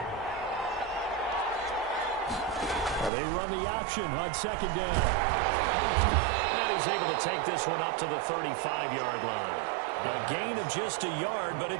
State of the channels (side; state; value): left; drops out; at 3.1 s